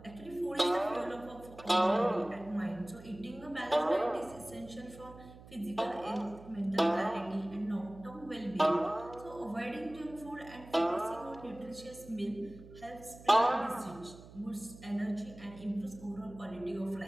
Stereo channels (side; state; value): right; noise; hum, 18 dB below the sound